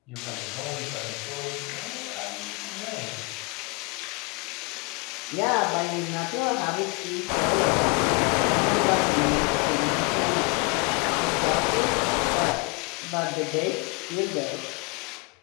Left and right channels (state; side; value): quieter; right; 30.4 dB